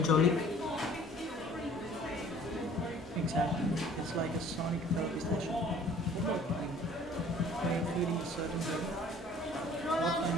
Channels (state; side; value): normal; both; correlation 0.52